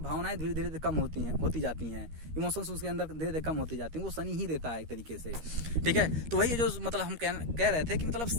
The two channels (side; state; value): left; late; 13 ms